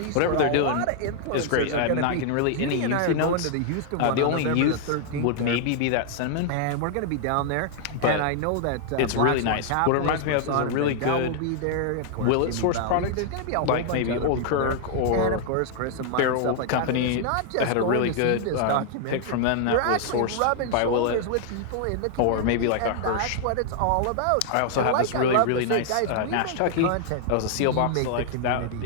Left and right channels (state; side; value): different; both; correlation 0.00